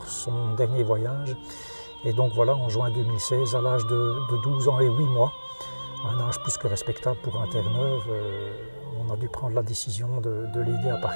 son dernier voyage. Et donc voilà, en juin 2016, à l'âge de 12 ans et 8 mois, un âge plus que respectable pour un Terre-Neuve, on a dû prendre la décision de l'aider à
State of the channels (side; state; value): both; inverted; correlation -1.00